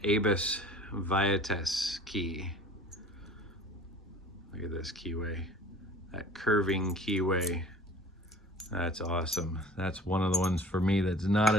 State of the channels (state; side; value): normal; both; correlation 0.45